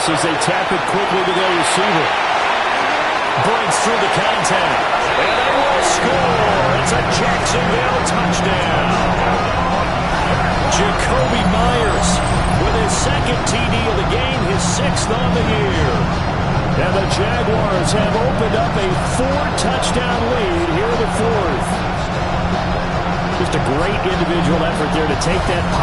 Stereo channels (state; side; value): identical; both; correlation 1.00